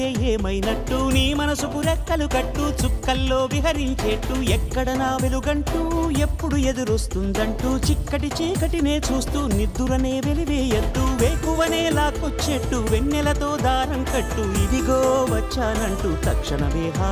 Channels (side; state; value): both; identical; correlation 1.00